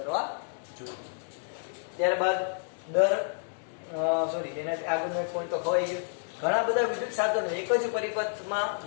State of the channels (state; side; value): silent; right; digital silence